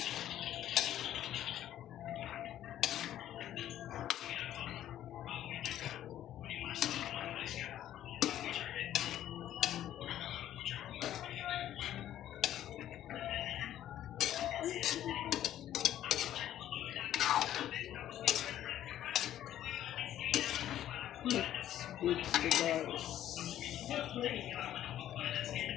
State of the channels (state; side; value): quieter; right; 12.0 dB